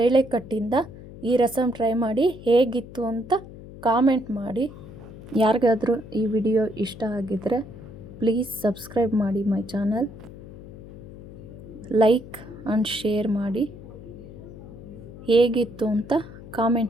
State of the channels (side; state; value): left; noise; hum, 15 dB below the sound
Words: ಈ ರಸಮ್ ಟ್ರೈ ಮಾಡಿ ಹೇಗಿತ್ತು ಅಂತ ಕಾಮೆಂಟ್ ಮಾಡಿ. ಯಾರಿಗಾದರೂ ಈ ವಿಡಿಯೋ ಇಷ್ಟ ಆಗಿದ್ದರೆ ಪ್ಲೀಸ್ ಸಬ್ಸ್ಕ್ರೈಬ್ ಮಾಡಿ my channel, like and share ಮಾಡಿ. ಹೇಗಿತ್ತು ಅಂತ